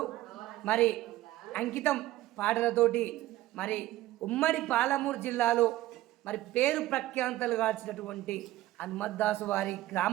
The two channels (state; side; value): quieter; left; 15.8 dB